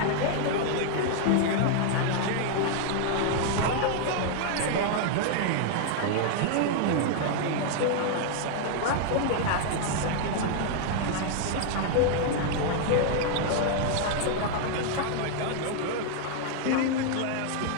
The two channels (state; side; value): different; both; correlation 0.00